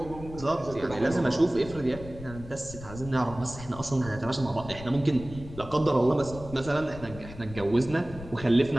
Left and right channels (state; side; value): noise; left; rumble, 14 dB below the sound